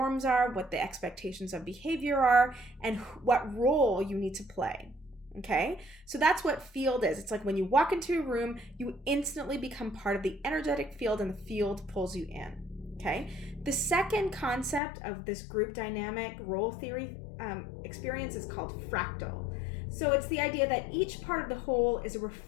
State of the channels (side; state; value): right; drops out; at 14.8 s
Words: are, what the expectations of behavior are, and what role you need to play. Okay? So, that's what field is. It's like when you walk into a room, you instantly become part of the energetic field, and the field pulls you in. Okay. The second concept of this group dynamic role theory experience is called fractal. So it's the idea that each part of the whole is a